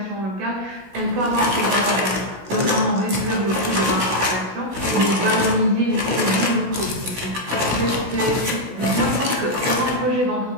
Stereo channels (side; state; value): left; late; 16 ms